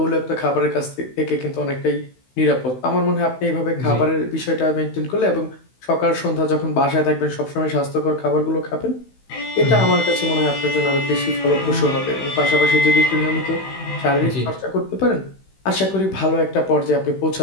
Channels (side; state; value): right; late; 16 ms